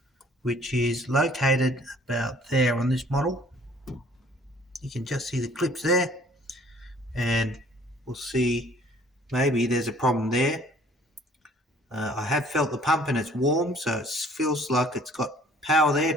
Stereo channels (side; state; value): both; normal; correlation 0.55